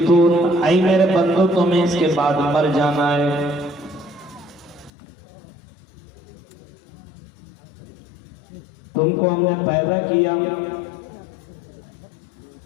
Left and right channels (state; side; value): drops out; right; at 4.9 s